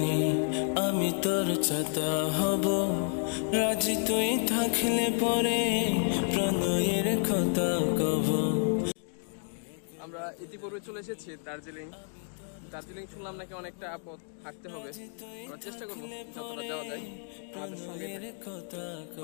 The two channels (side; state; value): right; silent; 57 dB below the other